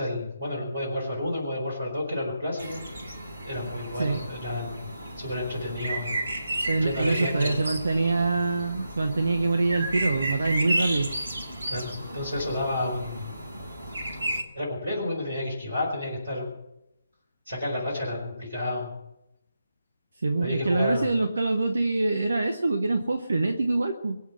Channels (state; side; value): inverted; both; correlation -0.86